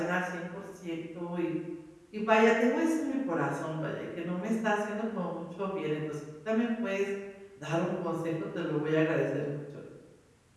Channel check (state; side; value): identical; both; correlation 1.00